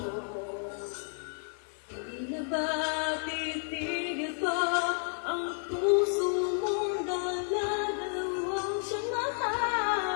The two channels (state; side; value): silent; right; 57 dB below the other